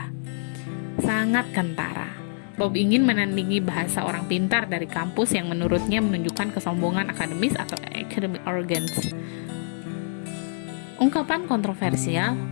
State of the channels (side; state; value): right; silent; digital silence